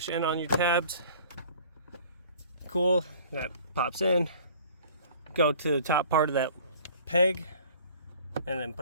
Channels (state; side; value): inverted; both; correlation -0.49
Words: in on your tabs. Cool, that pops in. Go to the top part of that peg and then